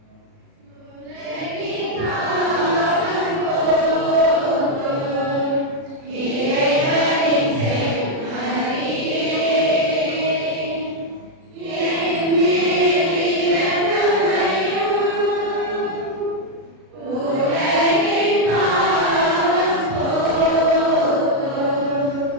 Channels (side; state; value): left; late; 36 ms